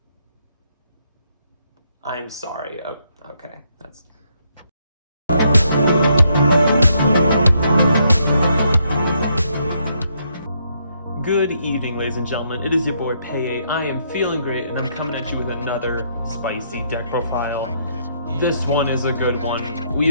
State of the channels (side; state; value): both; inverted; correlation -0.74